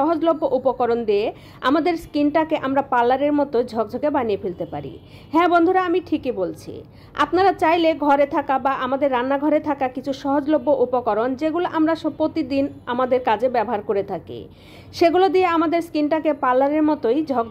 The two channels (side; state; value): both; identical; correlation 1.00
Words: উপকরণ দিয়ে আমাদের স্কিনটাকে আমরা পার্লারের মতো ঝকঝকে বানিয়ে ফেলতে পারি। হ্যাঁ বন্ধুরা, আমি ঠিকই বলছি। আপনারা চাইলে ঘরে থাকা বা আমাদের রান্নাঘরে থাকা কিছু সহজলভ্য উপকরণ, যেগুলো আমরা প্রতিদিন আমাদের কাজে ব্যবহার করে থাকি, সেগুলো দিয়ে আমাদের স্কিনটাকে পার্লারের মতোই